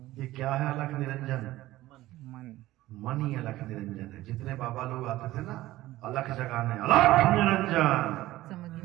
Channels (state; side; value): quieter; left; 16.5 dB